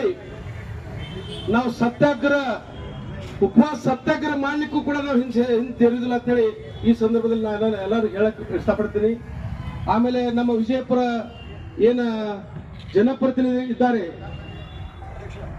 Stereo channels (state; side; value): identical; both; correlation 1.00